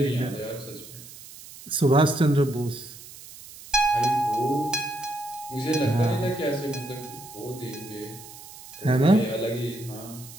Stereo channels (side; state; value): right; noise; hiss, 17 dB below the sound